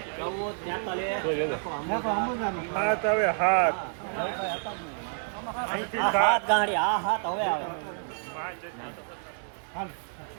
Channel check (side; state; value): left; silent; digital silence